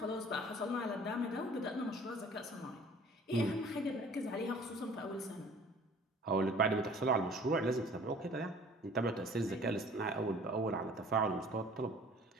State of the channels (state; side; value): normal; both; correlation 0.51